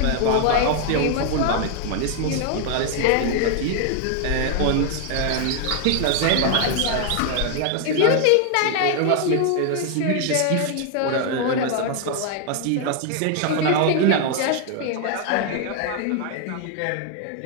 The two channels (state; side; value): different; both; correlation 0.00